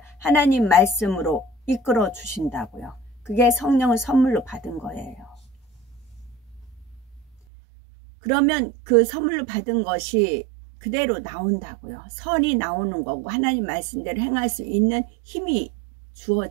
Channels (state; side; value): drops out; left; at 7.4 s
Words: 하나님 말씀으로 이끌어 주신다고요. 그게 성령을 선물로 받은 거예요. 그러면 그 선물로 받은 것이 그대로 나온다고요. 선이 나오는 거고 하나님 말씀대로 행할 수 있는 힘이